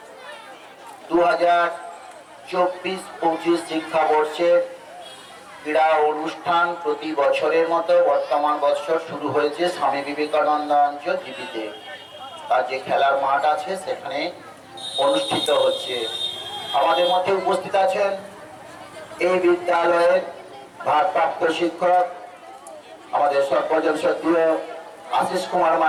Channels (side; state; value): both; identical; correlation 1.00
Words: 2024-25 শিক্ষাবর্ষের ক্রীড়া অনুষ্ঠান প্রতি বছরের মতো বর্তমান বছর শুরু হয়েছে স্বামী বিবেকানন্দ অঞ্চল জিপিতে। তার যে খেলার মাঠ আছে সেখানে অনুষ্ঠিত হচ্ছে। আমাদের মধ্যে উপস্থিত আছেন এই বিদ্যালয়ের ভারপ্রাপ্ত শিক্ষক আমাদের সর্বজন শ্রদ্ধেয় আশিস কুমার